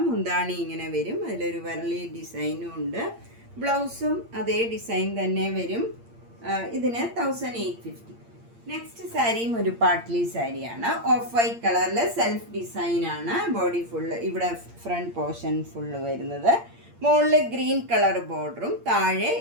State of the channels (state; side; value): late; left; 8.7 ms